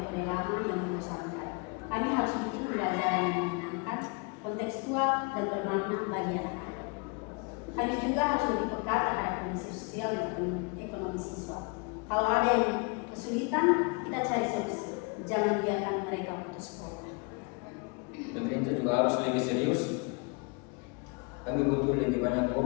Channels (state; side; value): quieter; right; 32.2 dB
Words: lama yang membosankan. Kami harus bikin pembelajaran yang menyenangkan, kontekstual, dan bermakna bagi anak-anak. Kami juga harus lebih peka terhadap kondisi sosial dan ekonomi siswa. Kalau ada yang kesulitan, kita cari solusi. Jangan biarkan mereka putus sekolah. Pemerintah juga harus lebih serius. Kami butuh lebih banyak